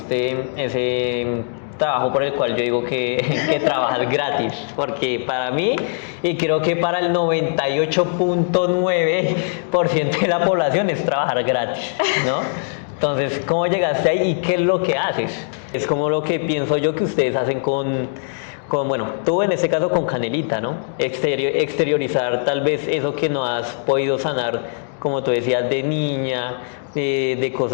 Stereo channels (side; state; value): right; silent; digital silence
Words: ese trabajo por el cual yo digo que trabajas gratis? Porque para mí, y creo que para el 98.9% de la población es trabajar gratis, ¿no? Entonces, ¿cómo llegaste ahí y qué es lo que haces? Es como lo que pienso yo que ustedes hacen bueno, tú en este caso con Canelita, ¿no? Exteriorizar tal vez eso que no has podido sanar, como tú decías, de niña, de